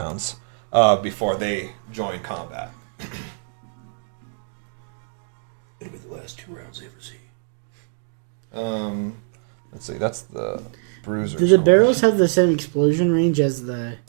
before they join combat. It'll be the last 2 rounds they ever see. Let's see, that's the bruiser. Do the barrels have the same explosion range as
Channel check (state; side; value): silent; left; 61 dB below the other